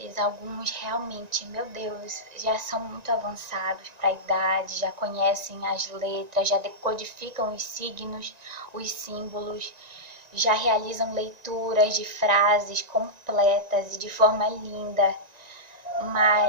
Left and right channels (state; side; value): late; left; 1.9 ms